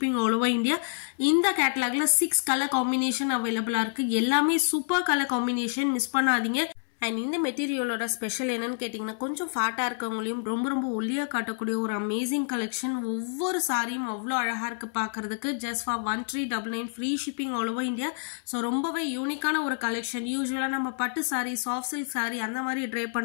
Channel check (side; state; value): right; silent; 59 dB below the other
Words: all over India. இந்த கேட்டலாக்ல 6 கலர் காம்பினேஷன் அவைலபிளா இருக்கு. எல்லாமே சூப்பர் கலர் காம்பினேஷன், மிஸ் பண்ணாதீங்க. அண்ட் இந்த மெட்டீரியலோட ஸ்பெஷல் என்னன்னு கேட்டீங்கன்னா கொஞ்சம் ஃபேட்டா இருக்கவங்களையும் ரொம்ப ஒல்லியா காட்டக்கூடிய ஒரு அமேசிங் கலெக்ஷன். ஒவ்வொரு சாரியும் அவ்வளோ அழகா இருக்கு பாக்குறதுக்கு. Just for 1399 free shipping all over India. So ரொம்பவே யூனிக்கான ஒரு கலெக்ஷன். யூஸ்வலா நம்ம பட்டு சாரி, சாஃப்ட் சில்க் சாரி அந்த மாதிரி ட்ரை